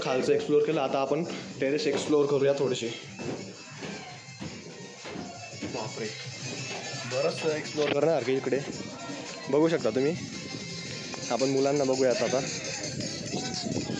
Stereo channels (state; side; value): identical; both; correlation 1.00